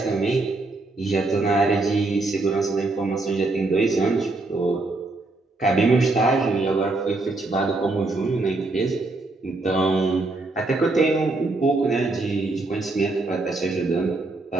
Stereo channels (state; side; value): quieter; left; 3.2 dB